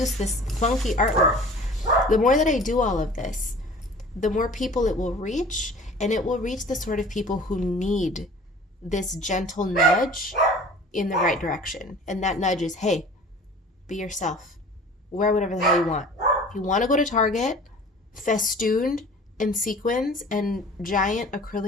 this funky artwork, the more that I do all of this, the more people it will reach, and it will reach the sort of people who need this gentle nudge in the right direction. And that nudge is, hey, be yourself. Wear whatever the hell you want. If you want to go to Target, festooned and sequins and giant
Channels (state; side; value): normal; both; correlation 0.45